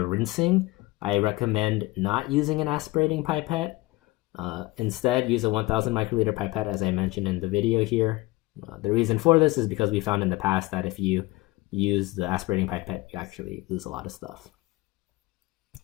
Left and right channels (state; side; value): quieter; right; 21.1 dB